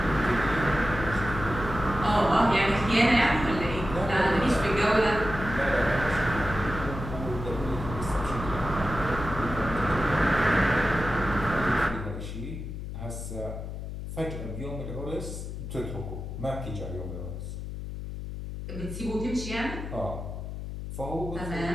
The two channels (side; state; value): left; noise; hum, 7 dB below the sound